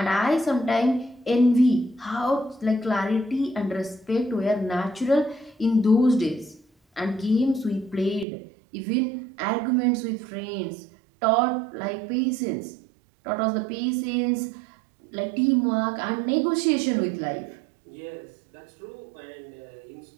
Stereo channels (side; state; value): left; drops out; at 8.2 s